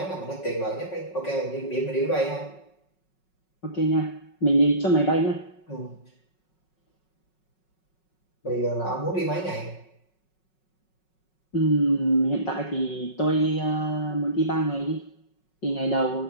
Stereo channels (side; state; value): right; late; 5.4 ms